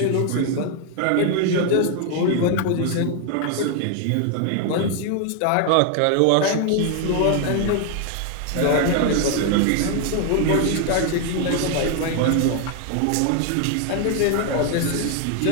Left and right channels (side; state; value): both; different; correlation 0.00